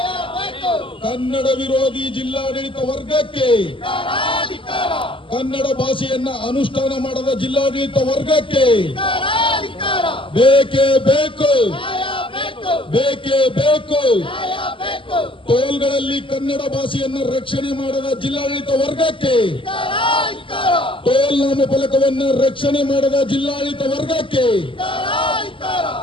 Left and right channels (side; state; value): right; late; 0.25 ms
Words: ಕನ್ನಡ ವಿರೋಧಿ ಜಿಲ್ಲಾಡಳಿತ ವರ್ಗಕ್ಕೆ, ಕನ್ನಡ ಭಾಷೆಯನ್ನ ಅನುಷ್ಠಾನ ಮಾಡದ ಜಿಲ್ಲಾಡಳಿತ ವರ್ಗಕ್ಕೆ ಬೇಕೇ ಬೇಕು, ಬೇಕೇ ಬೇಕು. ಟೋಲ್ಗಳಲ್ಲಿ ಕನ್ನಡ ಭಾಷೆಯನ್ನು ರಕ್ಷಣೆ ಮಾಡದ ಜಿಲ್ಲಾಡಳಿತ ವರ್ಗಕ್ಕೆ, ಟೋಲ್ ನಾಮಫಲಕವನ್ನು ರಕ್ಷಣೆ ಮಾಡದ ಜಿಲ್ಲಾಡಳಿತ ವರ್ಗಕ್ಕೆ,